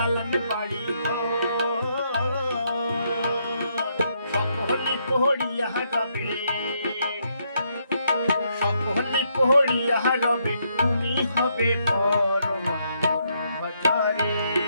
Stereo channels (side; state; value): both; inverted; correlation -0.75